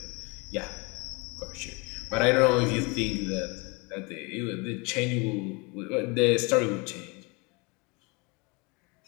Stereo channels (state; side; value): quieter; right; 28.7 dB